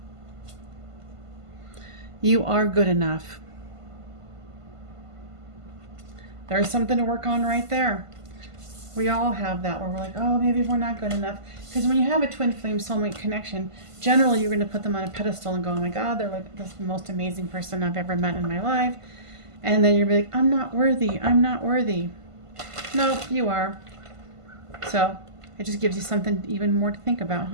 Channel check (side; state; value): left; late; 1.5 ms